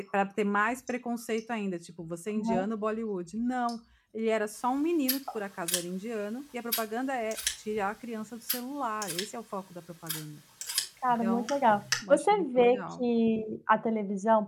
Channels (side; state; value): both; identical; correlation 1.00